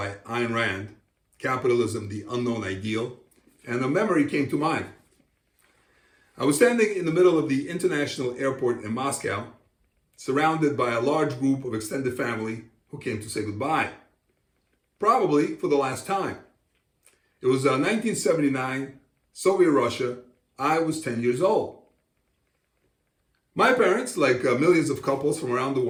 Ayn Rand, Capitalism, the Unknown Ideal, and a memory came to mind. I was standing in the middle of the international airport in Moscow, surrounded by a large group of extended family who came to say goodbye, probably for the last time. It was 1979, Soviet Russia. I was 10 years old. My parents, like millions of couples from around the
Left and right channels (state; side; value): identical; both; correlation 1.00